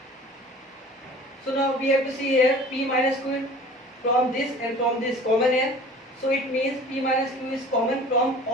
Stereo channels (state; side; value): normal; both; correlation 0.44